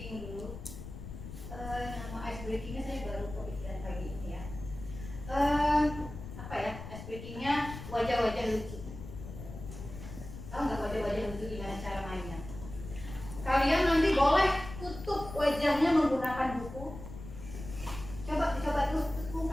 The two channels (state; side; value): noise; left; rumble, 11 dB below the sound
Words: dulu. Nama ice breakingnya saya baru kepikiran pagi ini ya. Ice breakingnya wajah-wajah lucu. Tahu nggak wajah-wajah lucu gimana cara mainnya? Kalian nanti boleh tutup wajahnya menggunakan buku. Coba tutup